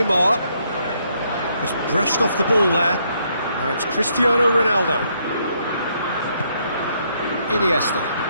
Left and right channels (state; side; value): inverted; both; correlation -0.73